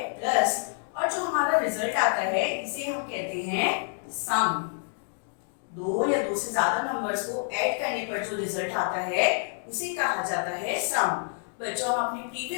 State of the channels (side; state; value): right; silent; 59 dB below the other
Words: प्लस, और जो हमारा रिजल्ट आता है इसे हम कहते हैं सम। दो या दो से ज्यादा नंबर्स को ऐड करने पर जो रिजल्ट आता है उसे कहा जाता है सम। बच्चों हम अपनी